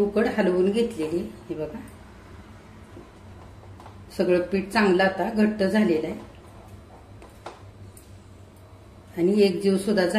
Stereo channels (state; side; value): identical; both; correlation 1.00